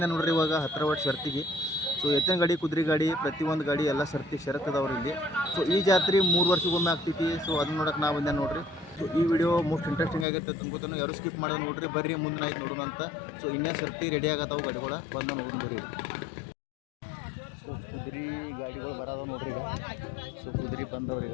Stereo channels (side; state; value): right; drops out; at 10.2 s